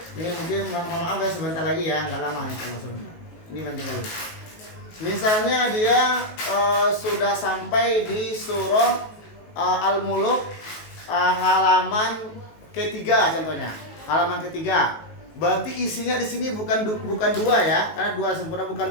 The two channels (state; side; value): late; right; 19 ms